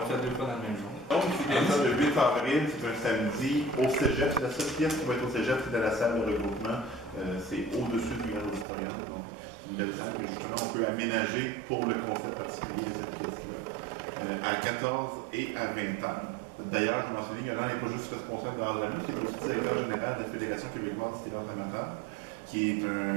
fait 2 fois dans le même jour. Donc, c'est bien ça, le 8 avril, c'est un samedi au cégep. C'est la seule pièce qui va être au cégep, c'est dans la salle de regroupement. C'est au-dessus du Grand Auditorium. Donc, une belle salle que justement on peut aménager pour le concept particulier de cette pièce-là. À 14 et à 20 ans. D'ailleurs, je mentionnais, Yolande n'est pas juste responsable de Ramus, qui est aussi directeur général de la Fédération québécoise du théâtre amateur, qui est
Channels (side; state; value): left; drops out; at 8.7 s